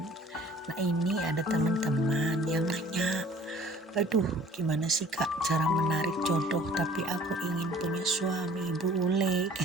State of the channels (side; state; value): both; normal; correlation 0.51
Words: Nah ini ada teman-teman yang nanya, aduh gimana sih kak cara menarik jodoh tapi aku ingin punya suami bule